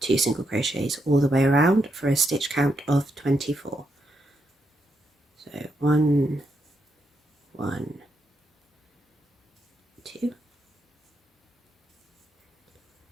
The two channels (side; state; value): both; normal; correlation 0.81